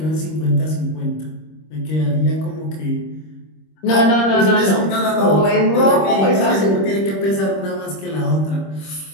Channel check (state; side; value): late; right; 26 ms